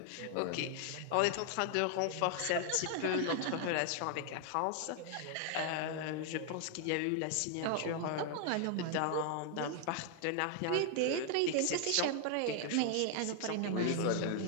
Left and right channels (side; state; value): both; different; correlation 0.00